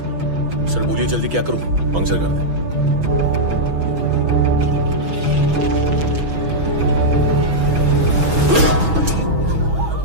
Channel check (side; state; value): left; late; 6.1 ms